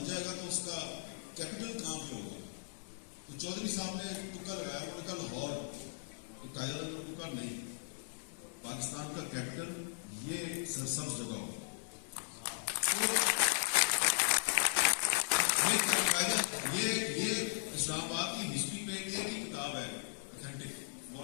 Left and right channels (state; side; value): silent; right; digital silence